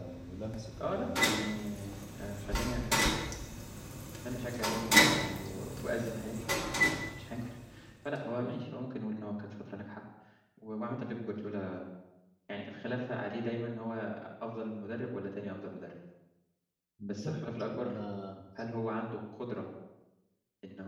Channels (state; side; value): identical; both; correlation 1.00